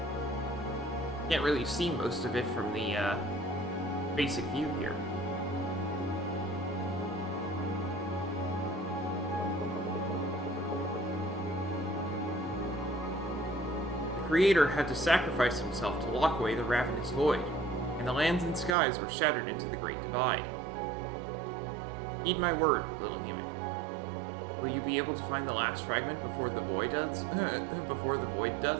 Can't really see most of it from the basic view here. The Creator had to sacrifice himself to lock away the ravenous void, and the lands and skies were shattered into the Great Divide. Heed my word, little human. Will you be able to find the last fragment before the void does?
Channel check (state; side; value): drops out; left; at 18.7 s